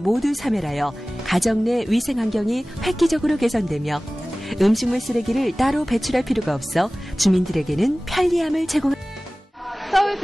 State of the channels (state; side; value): normal; both; correlation 0.98